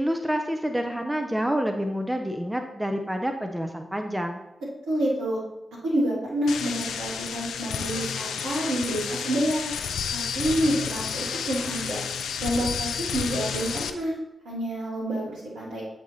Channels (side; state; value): both; normal; correlation 0.84